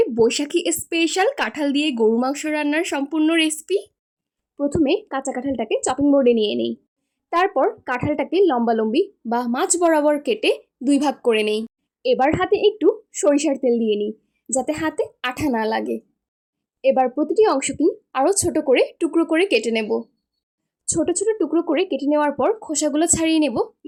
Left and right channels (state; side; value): identical; both; correlation 1.00